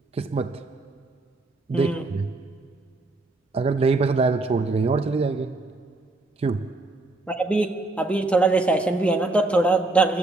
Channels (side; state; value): left; quieter; 3.1 dB